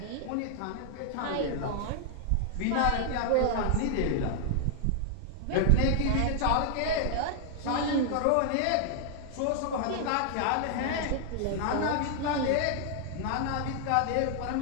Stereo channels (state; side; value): different; both; correlation 0.00